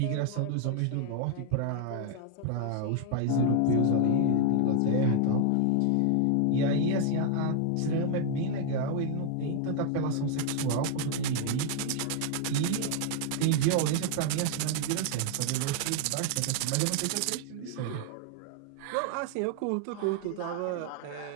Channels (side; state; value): both; different; correlation 0.00